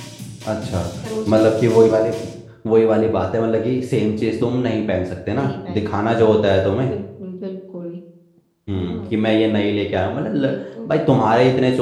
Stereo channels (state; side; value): identical; both; correlation 1.00